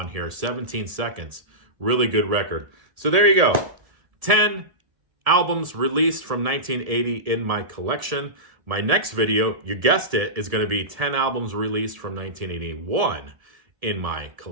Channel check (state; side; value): late; left; 1.7 ms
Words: here, 17 Seconds. Really good record. So there you go. 10 albums released from 1980 in my collection. My next video, you guessed it, is going to be 10 albums released from 1981 in my